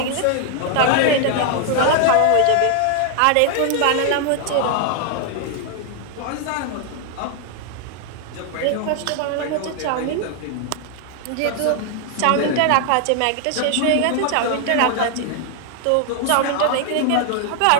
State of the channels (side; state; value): both; different; correlation 0.00